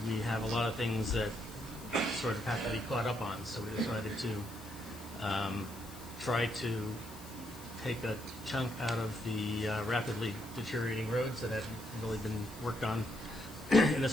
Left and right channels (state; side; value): noise; left; hiss, 17 dB below the sound